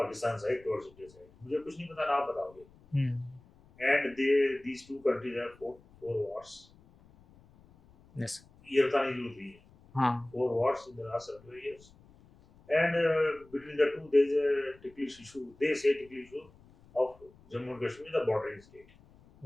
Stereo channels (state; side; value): noise; left; rumble, 26 dB below the sound